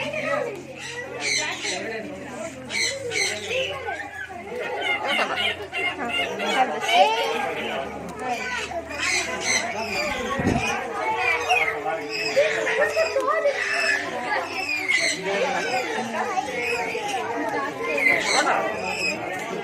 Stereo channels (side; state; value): both; identical; correlation 1.00